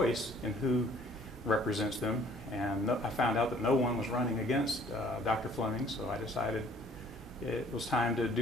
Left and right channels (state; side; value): normal; both; correlation 0.57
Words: in who represents them, and I found out that no one was running against Dr. Fleming, so I decided it was time to